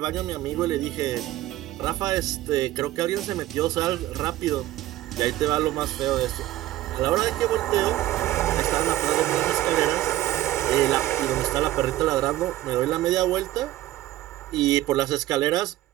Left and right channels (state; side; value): quieter; left; 15.3 dB